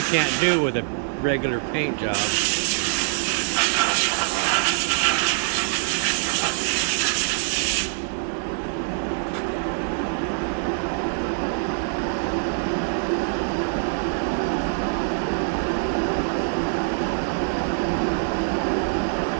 can't do with a regular paint job.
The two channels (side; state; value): left; silent; digital silence